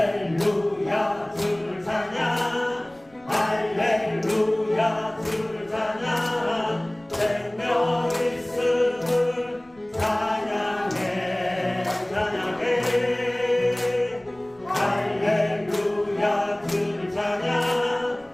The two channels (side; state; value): left; noise; rumble, 29 dB below the sound